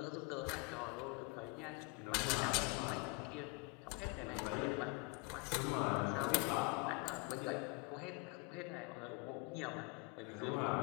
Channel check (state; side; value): quieter; right; 28.7 dB